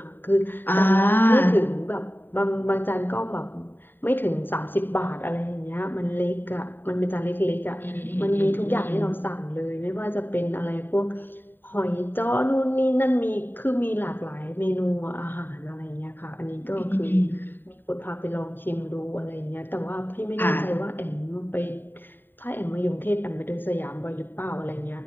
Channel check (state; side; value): late; right; 0.094 ms